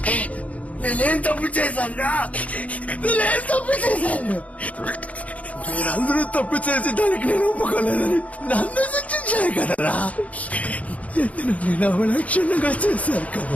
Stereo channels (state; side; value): late; right; 0.068 ms